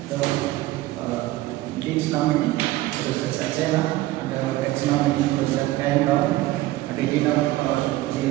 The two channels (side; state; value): left; quieter; 17.0 dB